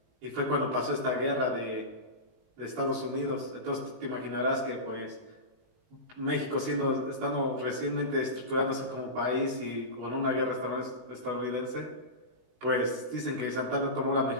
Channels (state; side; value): late; left; 19 ms